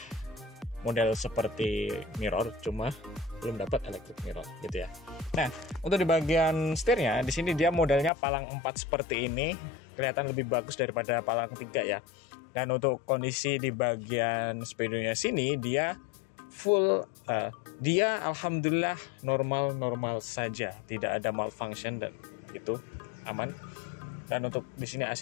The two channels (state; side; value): drops out; right; at 8.1 s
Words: model seperti mirror, cuma belum dapat electric mirror gitu ya. Nah, untuk di bagian setirnya di sini dia modelnya palang 4 seperti ini, kelihatan lebih bagus daripada palang 3 ya. Dan untuk kondisi di bagian speedonya sini dia full, dia alhamdulillah normal saja, tidak ada malfunction dan itu aman. Dan untuk di sini